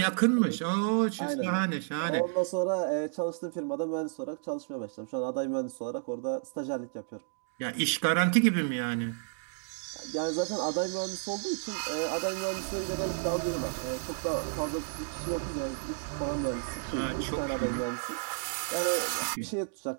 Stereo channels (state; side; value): silent; left; digital silence